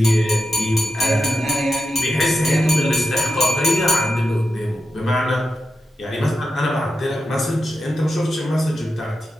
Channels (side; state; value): both; normal; correlation 0.88